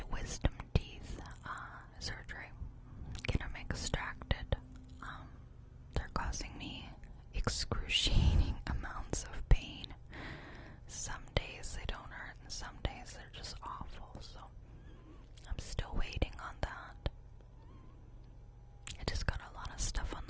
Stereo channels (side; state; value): both; identical; correlation 1.00